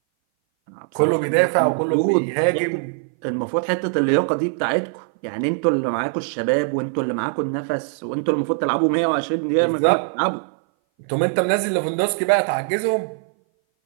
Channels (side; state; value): left; silent; 59 dB below the other